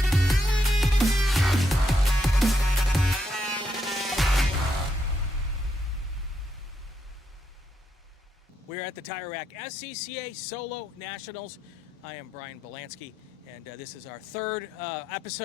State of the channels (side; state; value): both; normal; correlation 0.80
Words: We're at the Tire Rack SCCA Solo Nationals. I am Brian Bielanski, and this is our third